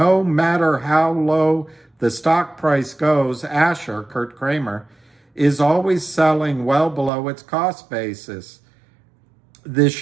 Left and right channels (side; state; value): left; drops out; at 7.1 s